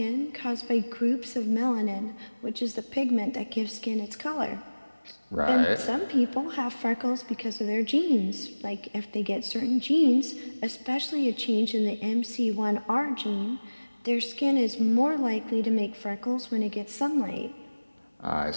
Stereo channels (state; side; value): inverted; both; correlation -1.00